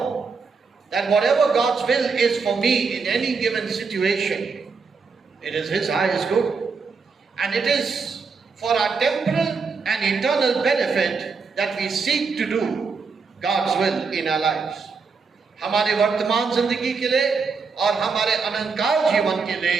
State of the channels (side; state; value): left; quieter; 4.9 dB